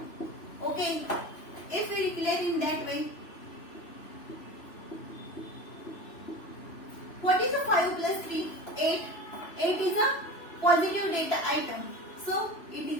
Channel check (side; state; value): right; late; 3.0 ms